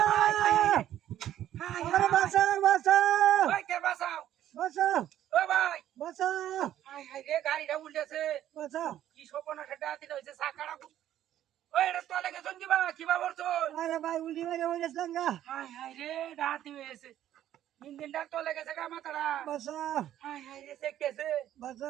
Ayo basah, basah. ওই কে বাঁচাও Basah, ও ভাই basah, হাই হাই রে গাড়িটা উল্টেছে basah. কি সপনা সেটা দিতে হইছে সাকাড়া ওই এটা তো লাগে জঙ্গি বা কিবা করছো Ayo bay uli bay uli selangga. High high রে ডাতি হয়েছে ইঞ্জিনটা তো লেগেছে গা মাথাটা Basah, হাই হাই রে সেকেছে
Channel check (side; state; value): left; quieter; 11.9 dB